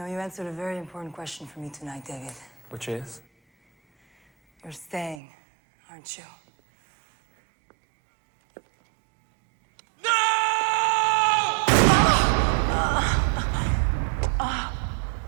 you answered a very important question for me tonight, David. Which is? You're staying, aren't you?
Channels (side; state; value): left; drops out; at 5.2 s